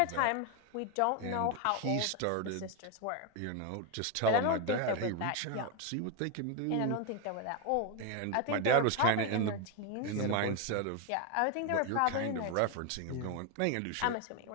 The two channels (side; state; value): both; different; correlation 0.01